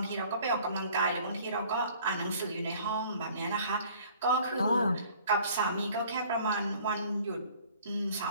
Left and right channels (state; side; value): inverted; both; correlation -0.52